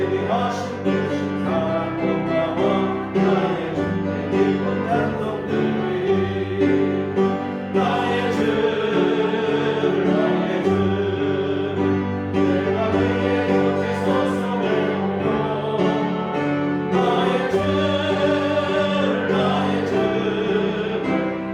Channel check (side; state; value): both; identical; correlation 1.00